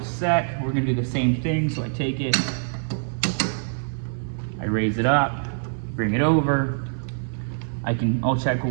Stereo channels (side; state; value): left; silent; 61 dB below the other